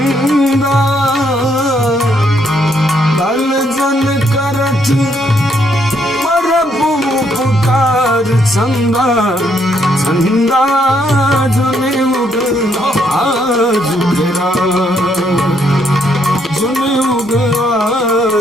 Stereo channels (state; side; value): normal; both; correlation 0.73